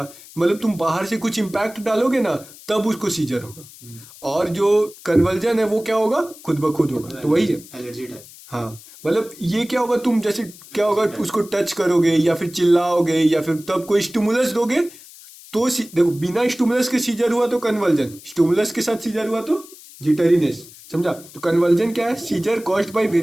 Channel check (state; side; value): noise; left; hiss, 20 dB below the sound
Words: मतलब तुम बाहर से कुछ इम्पैक्ट डालोगे ना, तब उसको सीजर होगा। और जो कन्वर्जन है वो क्या होगा, खुद ब खुद होगा। तो वही है एलर्जी टाइप। हाँ, मतलब ये क्या होगा, तुम जैसे क्या होगा, उसको टच करोगे या फिर चिल्लाओगे या फिर तब कोई स्टिमुलस दोगे तो देखो, बिना स्टिमुलस के सीजर हुआ तो कन्वर्जन, स्टिमुलस के साथ सीजर हुआ तो जिटरीनेस, समझा। तो कन्वर्जन क्या है, seizure caused by